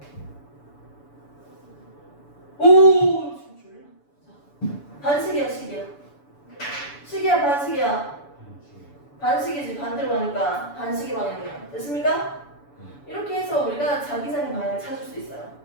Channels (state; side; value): late; right; 7.0 ms